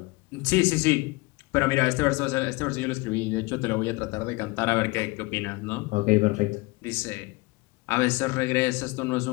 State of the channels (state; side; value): quieter; right; 24.1 dB